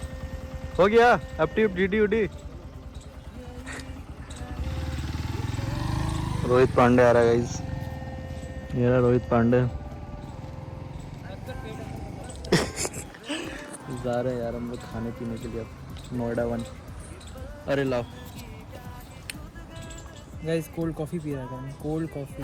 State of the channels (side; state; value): both; identical; correlation 1.00